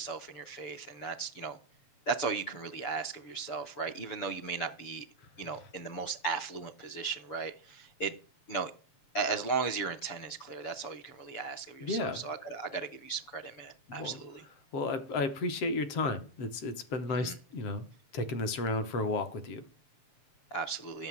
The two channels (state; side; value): late; right; 7.0 ms